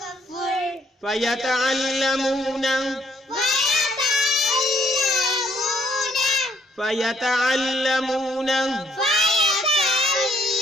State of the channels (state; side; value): normal; both; correlation 0.67